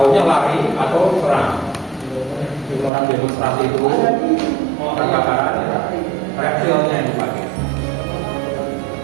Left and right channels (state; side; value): drops out; left; at 2.9 s